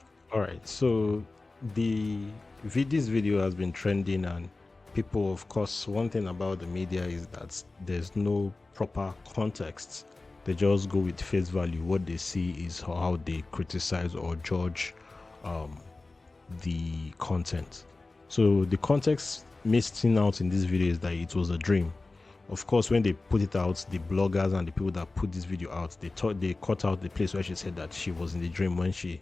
All right, so this video has been trending, and people, of course, one thing about the media is that there's no proper context. They just go with face value. What they see is how they criticize or judge the content. So the context missing out in this video is that it was a dream. Of course, when they put it out, the bloggers and the people that put this video out, they cut out the place where she said that she was in the dream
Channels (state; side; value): quieter; right; 3.4 dB